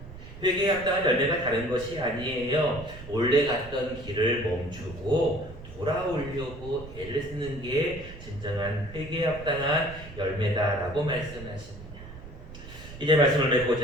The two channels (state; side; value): noise; right; rumble, 15 dB below the sound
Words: 회개에 합당한 열매가 다른 것이 아니에요. 원래 갔던 길을 멈추고 돌아오려고 애를 쓰는 게 진정한 회개에 합당한 열매다라고 말씀하십니다. 이제 말씀을